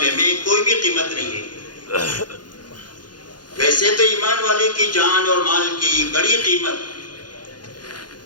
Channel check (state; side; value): late; right; 0.70 ms